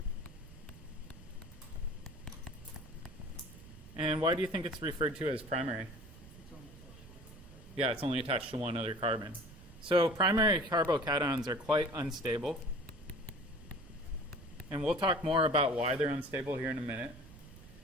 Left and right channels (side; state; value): right; noise; rumble, 18 dB below the sound